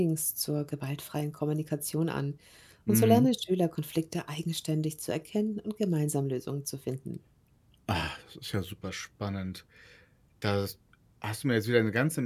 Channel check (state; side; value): identical; both; correlation 1.00